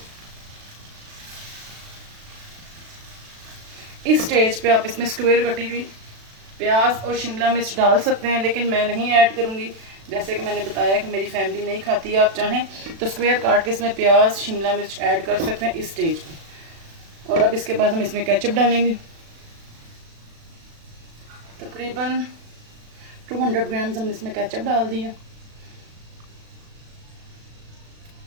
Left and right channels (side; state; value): left; late; 36 ms